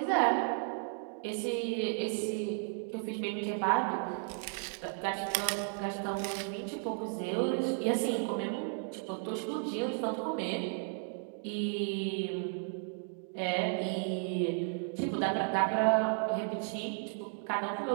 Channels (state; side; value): silent; left; 55 dB below the other